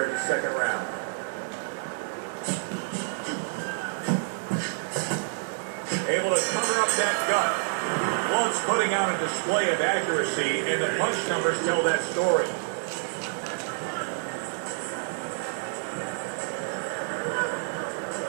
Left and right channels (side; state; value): left; silent; digital silence